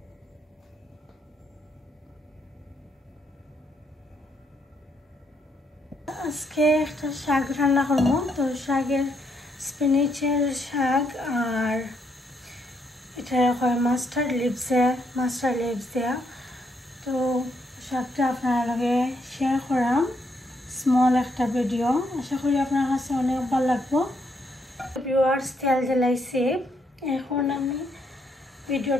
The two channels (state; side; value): normal; both; correlation 0.75